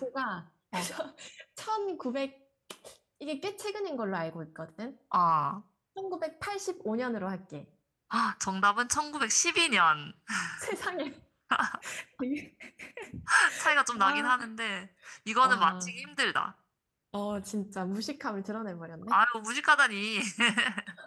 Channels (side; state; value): both; identical; correlation 1.00